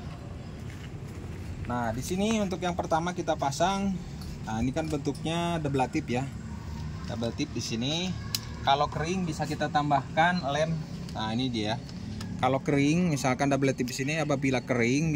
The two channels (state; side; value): identical; both; correlation 1.00